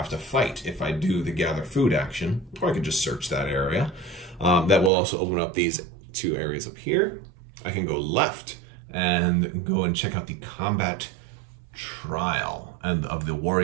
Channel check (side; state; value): left; drops out; at 4.9 s